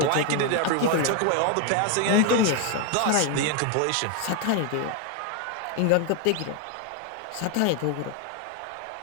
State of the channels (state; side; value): different; both; correlation 0.01